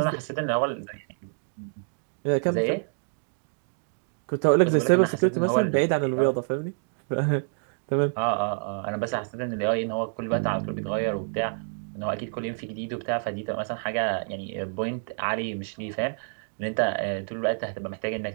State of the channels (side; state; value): left; silent; digital silence